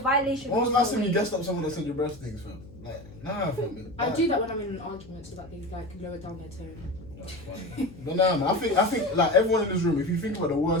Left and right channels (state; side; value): noise; left; hum, 20 dB below the sound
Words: When was the holds last time more you weight. guessed up someone that said your breast things, fam? Like, nah, fam. I do that when I'm in an argument so that they like lower down their tone. But nah, man, I think like everyone in this room, if you think about the